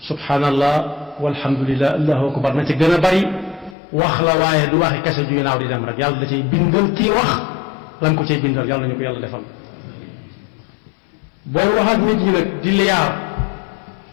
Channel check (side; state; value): right; drops out; at 3.8 s